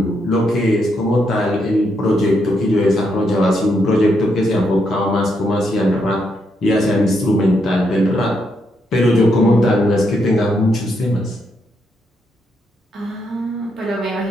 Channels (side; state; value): both; normal; correlation 0.79